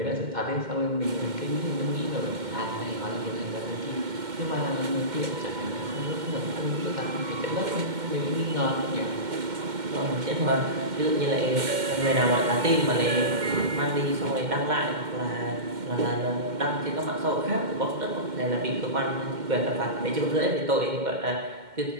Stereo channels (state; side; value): late; left; 2.1 ms